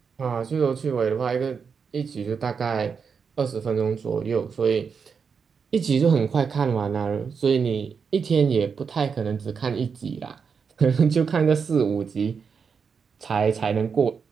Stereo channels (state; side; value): quieter; left; 6.0 dB